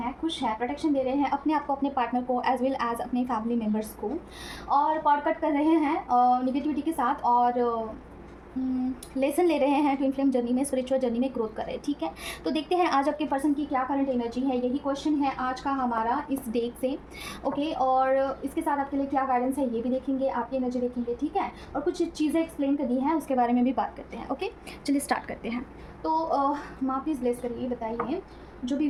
खुश हैं, प्रोटेक्शन दे रहे हैं अपने आप को, अपने पार्टनर को, एज वेल एज अपने फैमिली मेम्बर्स को, और कॉर्ड कट कर रहे हैं निगेटिविटी के साथ और लेसन ले रहे हैं ट्विन फ्लेम जर्नी में, स्पिरिचुअल जर्नी में ग्रोथ कर रहे हैं। ठीक है, तो देखते हैं आज आपके पर्सन की क्या करंट एनर्जी है। यही क्वेश्चन है आज का हमारा इस डेट से। ओके, और इसके साथ आपके लिए क्या गाइडेंस है ये भी देखेंगे, आपकी एनर्जी देखेंगे। ठीक है, और कुछ चीज़ें एक्सप्लेन करनी है उसके बारे में भी बात करते हैं। ओके, चलिए स्टार्ट करते हैं। तो माँ प्लीज़ ब्लेस करिए, बताइए जो भी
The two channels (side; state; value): both; identical; correlation 1.00